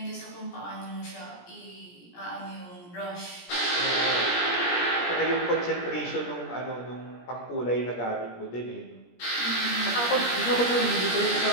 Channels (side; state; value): right; late; 17 ms